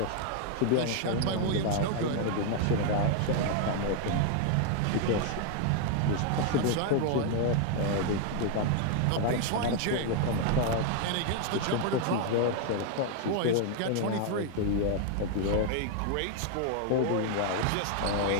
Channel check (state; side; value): different; both; correlation 0.00